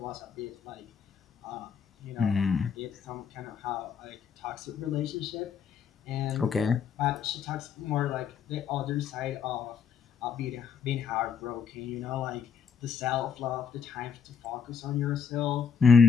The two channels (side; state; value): right; quieter; 6.7 dB